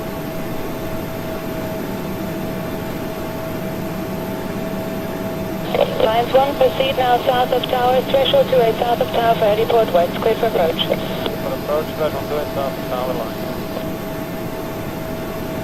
Science 1, proceed now south of tower, threshold 28 south of tower for heliport west, clear for approach. For approach, threshold 28 south of tower line.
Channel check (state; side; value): identical; both; correlation 1.00